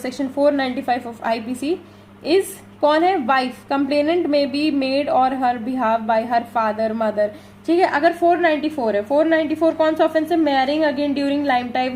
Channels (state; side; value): identical; both; correlation 1.00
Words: 495 ऑफ आईपीसी इज, कौन है, वाइफ, कंप्लेनेंट में बी मेड और हर behalf by her father mother, ठीक है। अगर 494 है, 494 कौन सा ऑफेंस है, marrying again during life